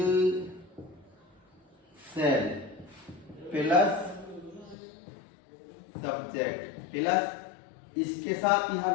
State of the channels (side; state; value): right; drops out; at 4.8 s